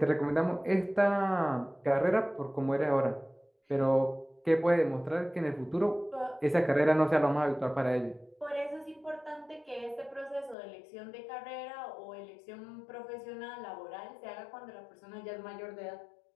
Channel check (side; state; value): right; drops out; at 10.6 s